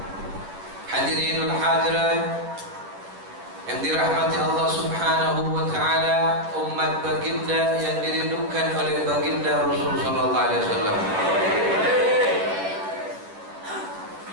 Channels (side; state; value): left; late; 10 ms